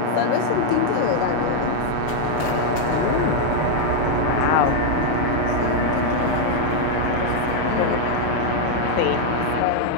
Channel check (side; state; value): both; different; correlation -0.01